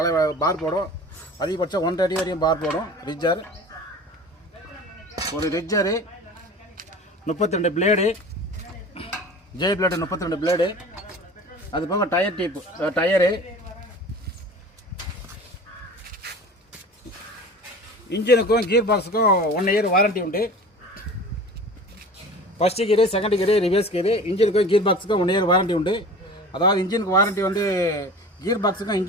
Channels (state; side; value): normal; both; correlation 0.39